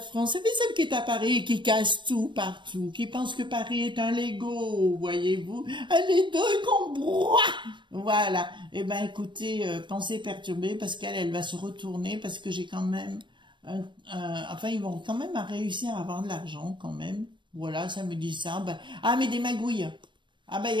Vous savez, celle qui est à Paris, qui casse tout partout, qui pense que Paris est un Lego, voyez-vous. Elle est deux qu'on broie. Voilà. Eh ben, écoutez, pensée perturbée, parce elle va se retourner, parce que j'ai quand même, enfin, ils vont quand même réussir à avoir de l'argent, quand même. Voilà, ça me dit ça. Ben, ah, mais des magouilles. Ah, ben, il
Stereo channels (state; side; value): late; left; 0.23 ms